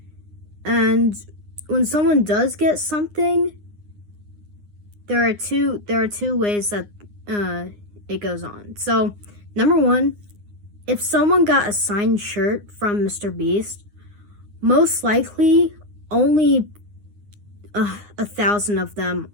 And when someone does get something, there are two ways that it goes on. So, number one, if someone got a signed shirt from MrBeast, most likely only 1,000 of them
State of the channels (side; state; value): left; late; 9.7 ms